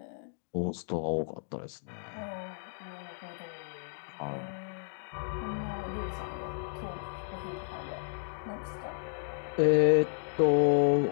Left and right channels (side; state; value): right; silent; digital silence